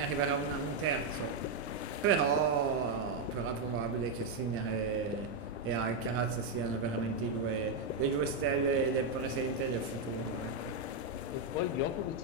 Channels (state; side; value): quieter; left; 3.4 dB